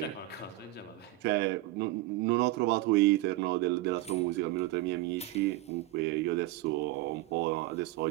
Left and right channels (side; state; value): left; quieter; 17.6 dB